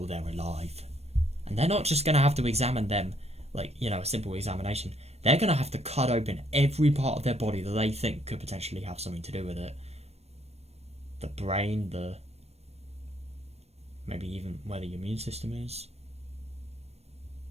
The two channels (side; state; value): left; late; 0.31 ms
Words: they're alive. And they're not just going to have to examine them, like, you know, a simple examination. They're going to have to cut open every part of their body that they think could potentially have something to do with it. The brain, maybe even where the immune system is.